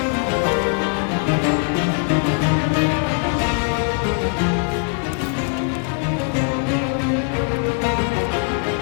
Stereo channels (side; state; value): right; quieter; 39.4 dB